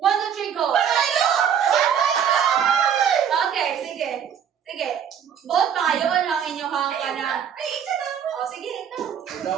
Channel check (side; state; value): left; quieter; 8.3 dB